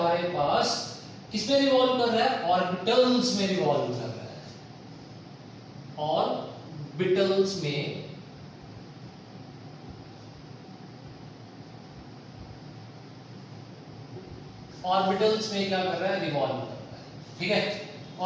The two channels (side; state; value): both; identical; correlation 1.00